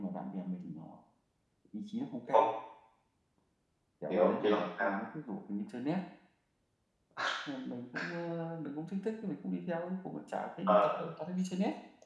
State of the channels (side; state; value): both; identical; correlation 1.00